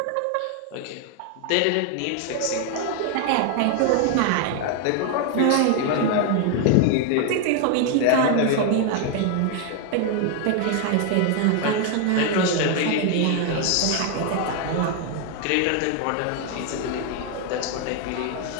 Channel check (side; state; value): both; different; correlation 0.01